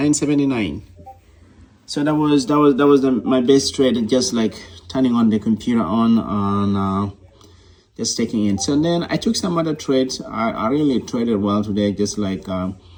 So that was my best trade, and just like turning on the computer on and just taking in. So then I took some other trades. I really traded well today. Just like that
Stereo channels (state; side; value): identical; both; correlation 1.00